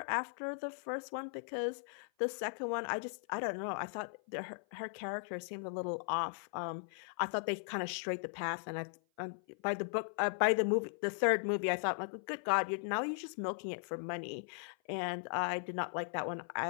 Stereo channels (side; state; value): right; silent; 52 dB below the other